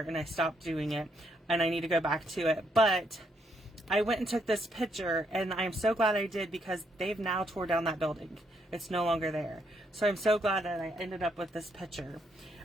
I stopped doing it, and I need to go back to it. But I went and took this picture, and I'm so glad I did because they've now tore down that building. It's no longer there. So I'm so glad that I ended up with this picture.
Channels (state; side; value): normal; both; correlation 0.74